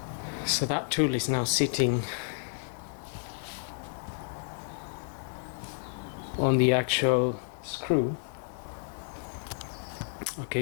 so that tool is now sitting on the actual screw.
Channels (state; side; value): silent; right; 57 dB below the other